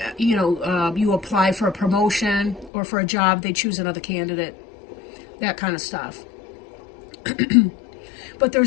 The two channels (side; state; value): right; drops out; at 2.7 s